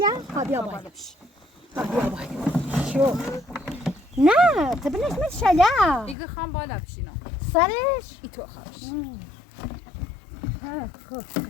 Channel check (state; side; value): drops out; right; at 6.2 s